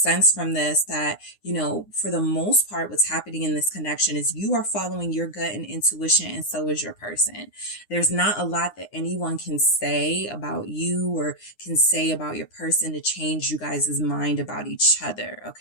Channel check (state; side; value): late; right; 9.7 ms